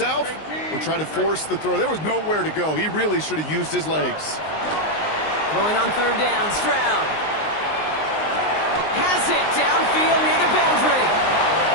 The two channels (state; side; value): late; right; 19 ms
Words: or try to force the throw. There was nowhere to go. He really should have used his legs. Throwing on 3rd down, Stroud. Has it downfield near the boundary.